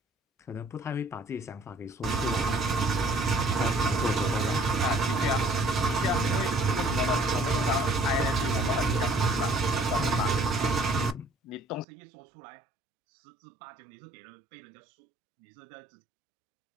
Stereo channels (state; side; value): drops out; left; at 11.9 s